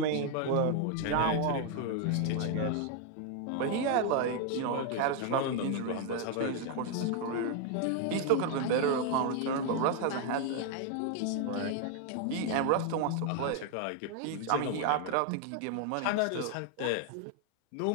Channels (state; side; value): different; both; correlation 0.00